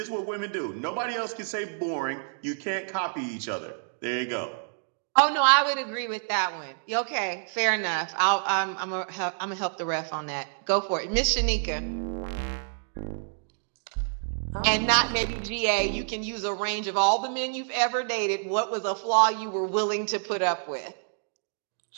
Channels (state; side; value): silent; left; digital silence